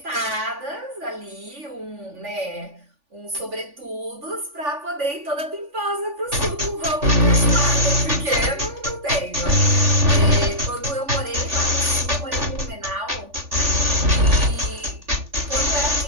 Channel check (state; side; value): late; left; 3.5 ms